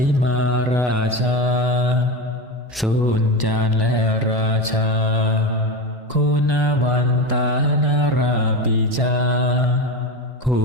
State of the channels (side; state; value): both; normal; correlation 0.21